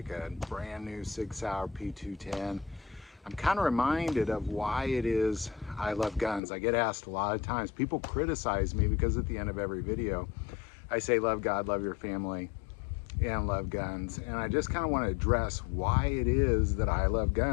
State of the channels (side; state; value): right; drops out; at 6.4 s